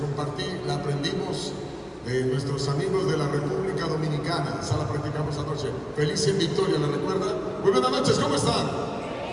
la aprendimos de nuestros amigos de la República Dominicana. Esa la practicamos anoche. Feliz en Victoria, ¿la recuerdan? Muy buenas noches, ¿cómo están?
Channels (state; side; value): identical; both; correlation 1.00